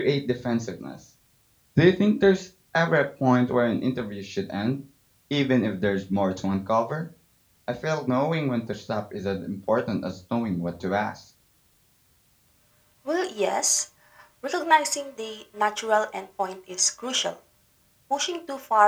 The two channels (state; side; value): identical; both; correlation 1.00